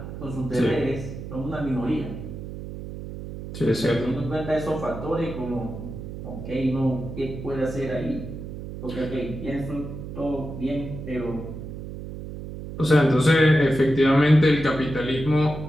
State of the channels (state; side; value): noise; right; hum, 9 dB below the sound